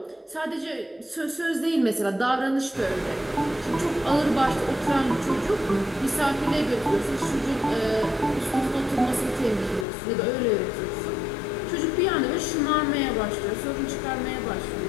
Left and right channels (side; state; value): right; drops out; at 9.9 s